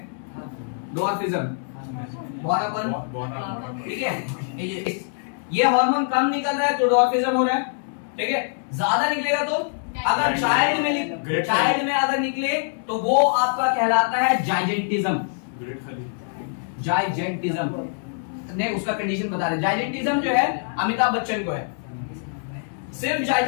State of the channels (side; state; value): right; silent; 63 dB below the other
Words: डॉर्फिज्म, बौनापन, ठीक है। ये हार्मोन कम निकल रहा है तो डॉर्फिज्म हो रहा है, ठीक है। ज्यादा निकलेगा तो, अगर चाइल्ड में अगर निकले तो वो आपका कहलाता है जाइजेंटिज्म, जाइजेंटिज्म ने उसका कंडीशन बता रहे। जाइजेंटिज्म जो है अमिताभ बच्चन को है, सिर्फ